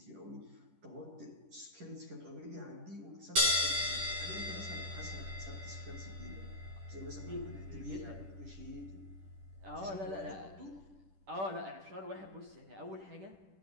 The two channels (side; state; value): left; late; 10 ms